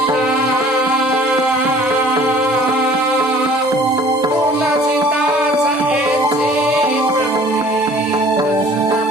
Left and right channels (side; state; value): both; normal; correlation 0.51